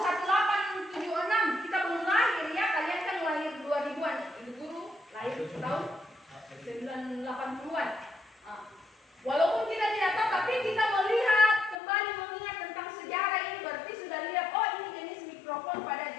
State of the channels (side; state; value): right; drops out; at 11.8 s